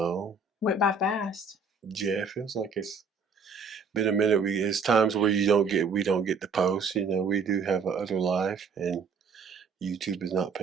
Went by fast. yeah, it feels like it's been a minute. It's times where we don't get the post. You know, we do have a other life, and YouTube is not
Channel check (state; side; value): quieter; left; 4.8 dB